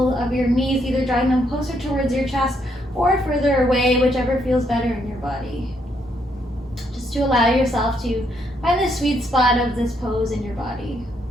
of your knees, either drawing them closer towards your chest or further away, whichever feels better in your body. Just to allow yourself to find the sweet spot of this pose in your body.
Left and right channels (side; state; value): both; normal; correlation 0.74